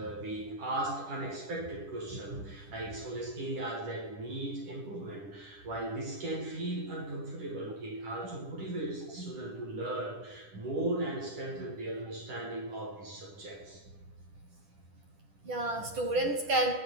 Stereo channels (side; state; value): left; late; 10 ms